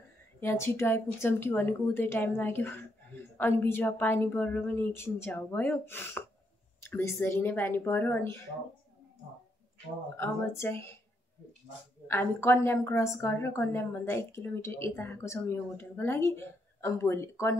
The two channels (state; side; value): normal; both; correlation 0.77